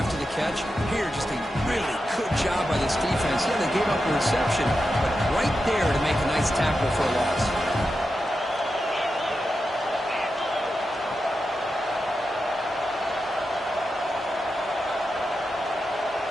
the catch? Here, just a really good job by this defense. Yeah, they gave up a reception, but right there to make a nice tackle for a loss.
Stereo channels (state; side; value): normal; both; correlation 0.89